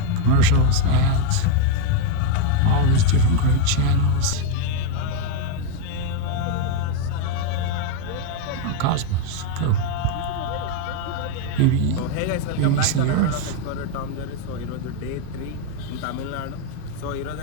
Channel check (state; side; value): different; both; correlation 0.01